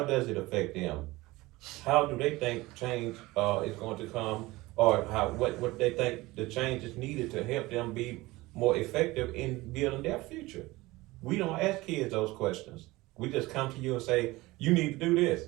does it affect them? How do they think change is going to come, or what they think the change is needed to help them be more effective in building their future? We don't ask kids those questions. We just come to you and say, you need to do this,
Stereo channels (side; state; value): left; quieter; 20.2 dB